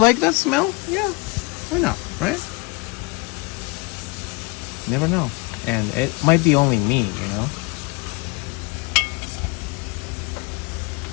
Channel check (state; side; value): quieter; right; 26.9 dB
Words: that smell, yeah, why not, right? Never know. And it might be only me, you know?